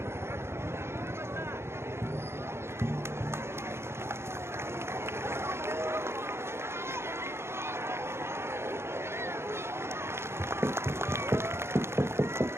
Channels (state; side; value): late; left; 0.12 ms